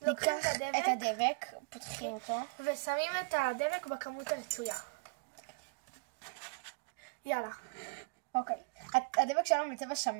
ניקח את הדבק, פותחים אותו ושמים את הדבק בכמות הרצויה. יאללה. אוקיי. הדבק שלנו בצבע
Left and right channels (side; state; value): left; quieter; 32.4 dB